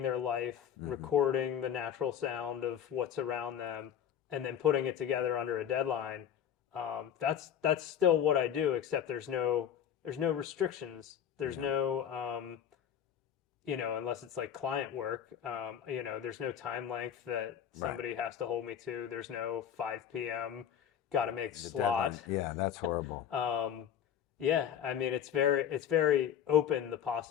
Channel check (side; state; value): right; quieter; 9.2 dB